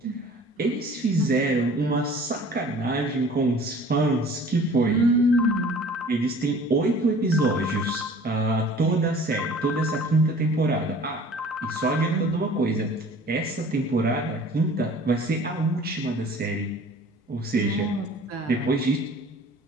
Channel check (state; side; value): normal; both; correlation 0.48